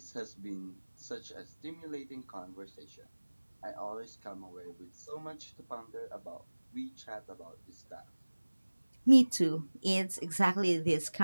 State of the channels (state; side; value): inverted; both; correlation -1.00